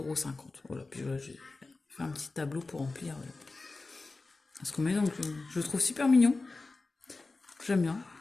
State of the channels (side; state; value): right; quieter; 3.5 dB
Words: Voilà, puis voilà, j'ai fait un petit tableau pour remplir ce qu'on met. Donc, je le trouve super mignon. J'aime bien.